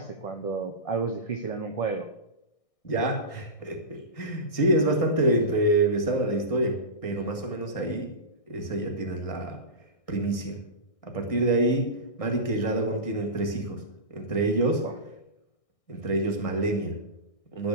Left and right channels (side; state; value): right; late; 1.6 ms